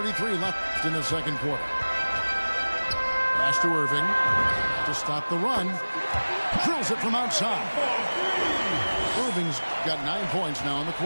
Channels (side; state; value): both; inverted; correlation -1.00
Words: left in the second quarter. Pass to Irving to stop the run. Drills it from outside. Irving's got 9 points now in the